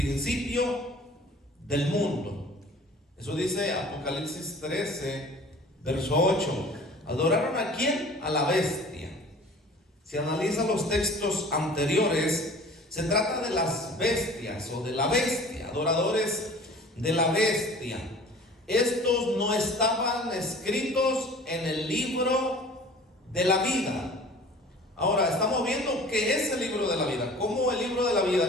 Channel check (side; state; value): both; normal; correlation 0.45